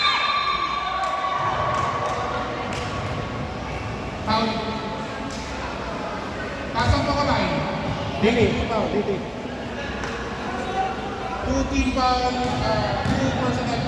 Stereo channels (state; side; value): identical; both; correlation 1.00